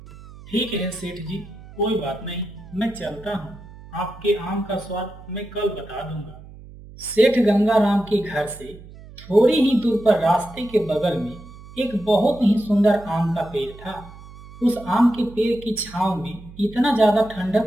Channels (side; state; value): right; noise; hum, 18 dB below the sound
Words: ठीक है सेठ जी, कोई बात नहीं, मैं चलता हूँ। आपके आम का स्वाद मैं कल बता दूंगा। सेठ गंगाराम के घर से थोड़ी ही दूर पर रास्ते के बगल में एक बहुत ही सुंदर आम का पेड़ था। उस आम के पेड़ की छांव में इतना ज्यादा